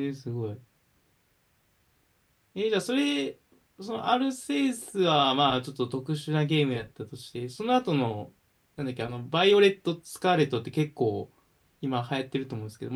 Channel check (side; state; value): both; identical; correlation 1.00